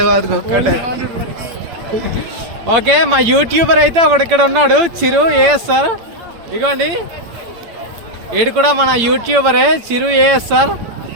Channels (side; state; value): left; late; 8.8 ms